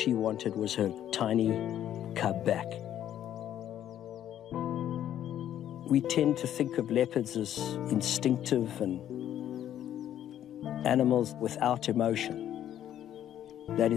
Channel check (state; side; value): quieter; right; 11.1 dB